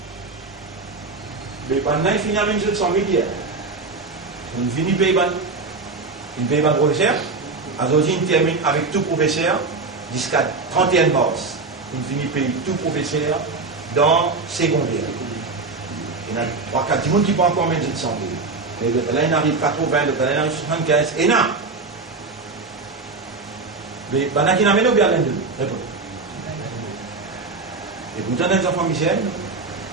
Mais pendant il finit à 100 000 hier. On finit payer une paye par professeur. Aujourd'hui, on termine avec tout professeur jusqu'à 31 mars. On finit payer tout professeur dans secondaire. Il y a 3-4 personnes qui vont encore mettre 100 000. Et là, il arrive 80, là, il arrive 75, et là. Mais il y a qui n'amènent bien l'un de nous. Et pourtant, les enfants misères,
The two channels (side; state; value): left; quieter; 3.9 dB